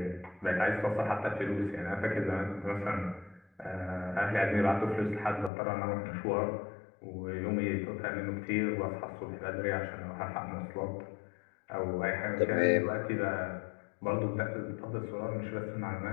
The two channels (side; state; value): right; drops out; at 5.5 s